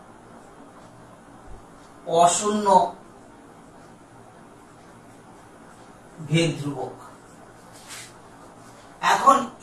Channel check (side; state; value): both; identical; correlation 1.00